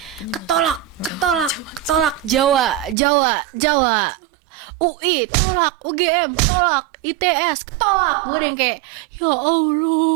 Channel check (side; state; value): left; drops out; at 3.0 s